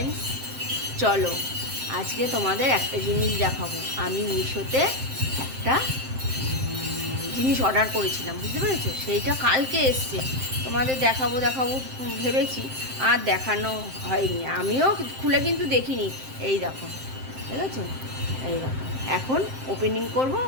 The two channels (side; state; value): left; late; 7.6 ms